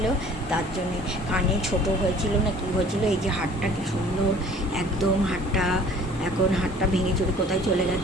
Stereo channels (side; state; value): both; normal; correlation 0.50